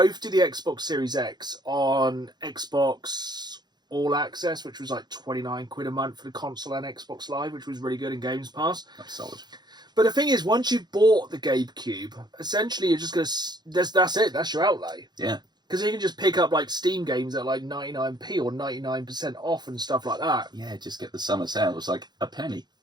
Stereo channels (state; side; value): late; left; 0.21 ms